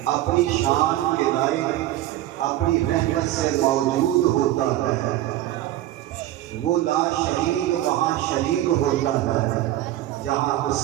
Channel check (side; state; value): left; quieter; 14.2 dB